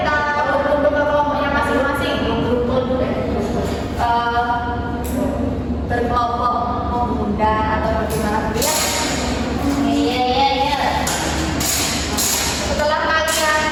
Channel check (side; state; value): both; identical; correlation 1.00